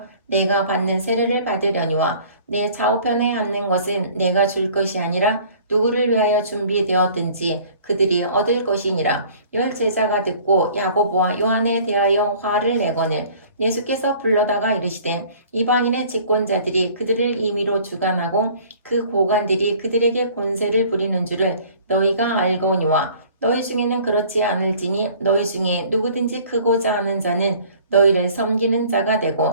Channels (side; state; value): both; inverted; correlation -0.51